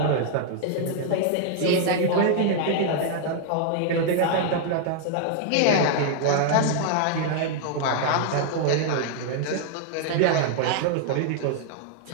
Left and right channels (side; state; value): both; different; correlation -0.01